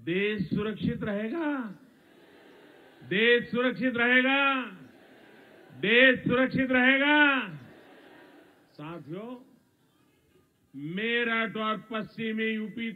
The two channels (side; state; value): both; identical; correlation 1.00